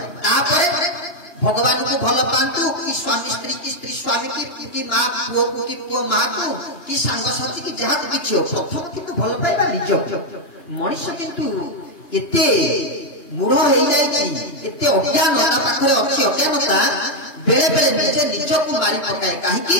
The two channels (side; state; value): right; late; 2.9 ms